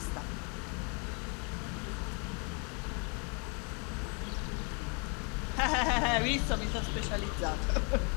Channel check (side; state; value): right; quieter; 35.4 dB